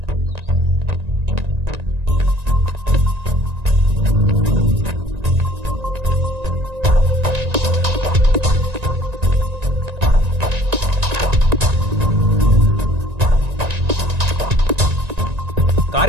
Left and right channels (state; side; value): late; left; 1.9 ms